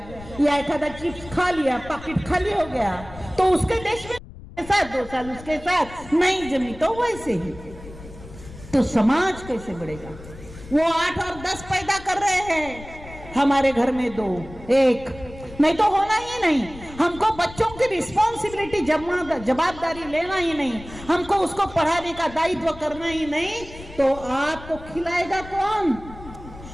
या एक आधा चिप्स खा लिया, पैकेट खाली हो गया, तो उसके देश में साथ 2 साल उसके साथ नहीं जमी, तो वैसे ही तो समाज कैसे बढ़ेगा? वो 8 और 10 पैदा कर रहे हैं, हमारे घर में 2 1 नहीं तो होना ही नहीं। हमको बच्चों की रिस्पॉन्सिबिलिटी जवाबदारी लेना ही नहीं, हमको उसको पढ़ाने का दायित्व करना ही नहीं, तो आपको खिलाएगा कौन?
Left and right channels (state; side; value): noise; left; rumble, 16 dB below the sound